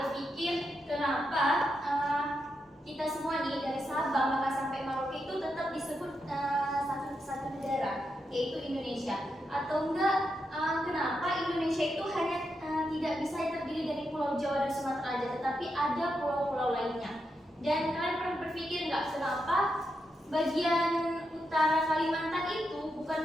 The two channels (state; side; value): normal; both; correlation 0.84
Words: tetapi ada pulau-pulau lainnya. Dan kalian pernah berpikir nggak kenapa bagian utara Kalimantan itu